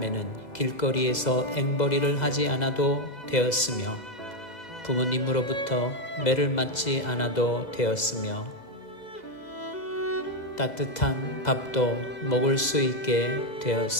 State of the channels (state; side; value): late; right; 2.0 ms